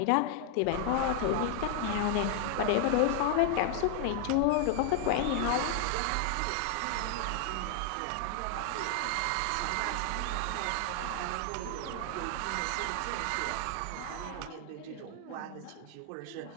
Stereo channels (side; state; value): both; different; correlation 0.00